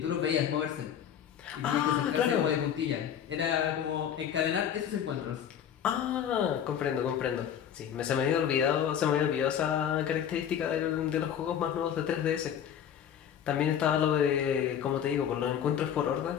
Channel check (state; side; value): quieter; right; 9.1 dB